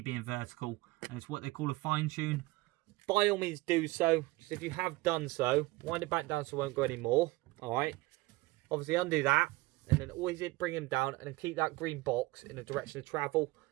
being vertical, and it's what they call a fine tune. By all means do so. Just if you have done so, wind it back down so it won't go anymore. Alright. Obviously undo that, and then always bring them down and then keep that green box in the direction of travel.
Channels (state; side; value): quieter; left; 21.3 dB